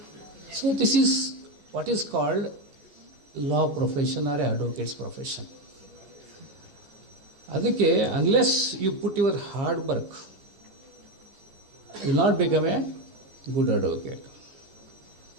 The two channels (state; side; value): late; left; 15 ms